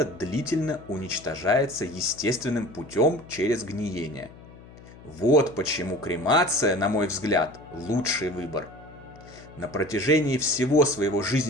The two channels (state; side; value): noise; left; hum, 20 dB below the sound